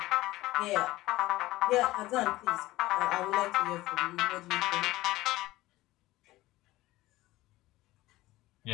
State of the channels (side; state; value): right; quieter; 17.8 dB